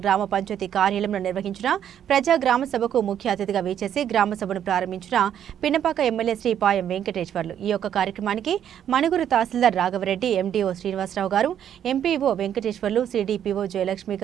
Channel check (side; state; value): left; quieter; 9.7 dB